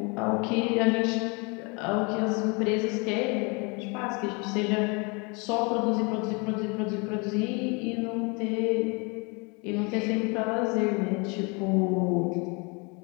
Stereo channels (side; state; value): right; quieter; 30.7 dB